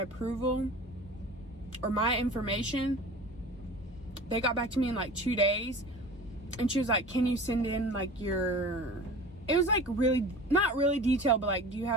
approval or my information, they got back to me in like 2 days, and she was like, can you send in like your, it was like really, not really detailed, but like, do you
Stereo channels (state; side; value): normal; both; correlation 0.38